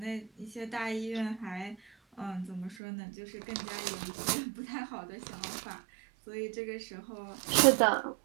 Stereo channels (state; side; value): drops out; left; at 2.8 s